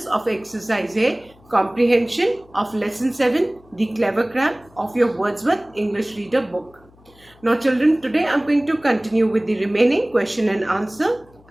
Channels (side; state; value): left; noise; hum, 28 dB below the sound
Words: of exercise A, comprehension of lesson 7, the clever crab of your Wordsworth English Reader book. Now children, today I'm going to continue with the remaining question and answer